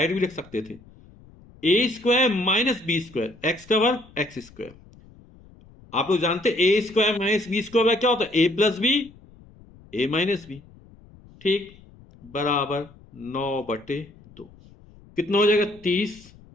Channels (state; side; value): noise; left; rumble, 24 dB below the sound